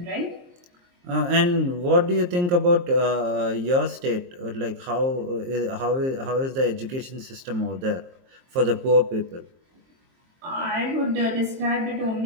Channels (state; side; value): late; left; 23 ms